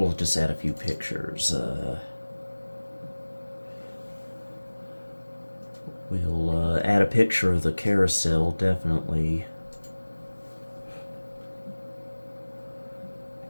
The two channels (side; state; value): both; inverted; correlation -1.00